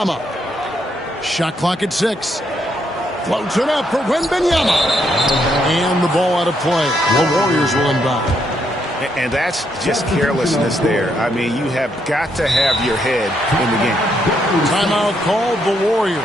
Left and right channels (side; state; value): both; normal; correlation 0.76